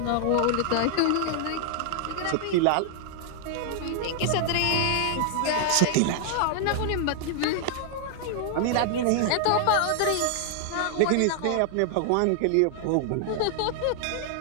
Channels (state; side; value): different; both; correlation 0.00